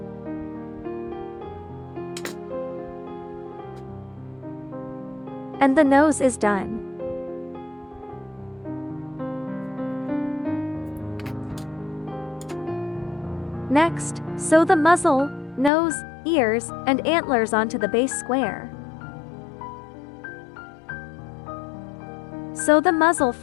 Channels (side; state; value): right; drops out; at 15.7 s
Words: And the nose is done. Next, sew the muzzle, nose, ears, and antlers onto the base square. Sew the muzzle